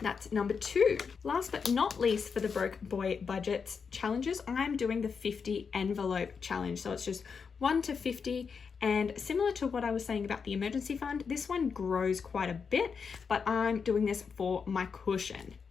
number 2. Last but not least, for the Broke Boy Budgets challenges, I'm doing the 50 envelope challenge. So it's just 1 to 50. And similar to what I was saying about the emergency fund, this one grows quite a bit, but I'm doing this for my cushion.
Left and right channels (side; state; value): right; quieter; 5.8 dB